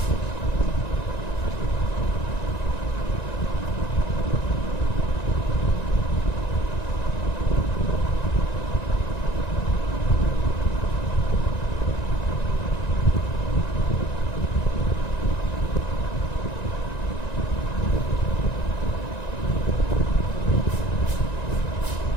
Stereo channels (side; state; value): right; late; 1.9 ms